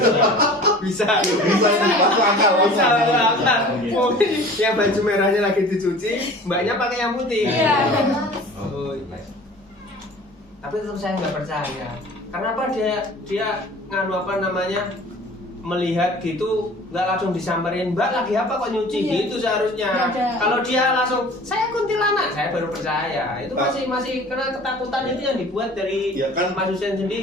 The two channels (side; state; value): both; normal; correlation 0.44